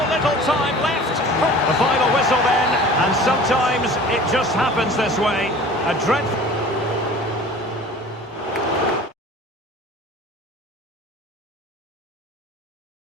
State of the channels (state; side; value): normal; both; correlation 0.43